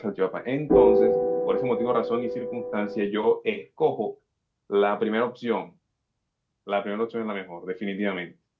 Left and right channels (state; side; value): identical; both; correlation 1.00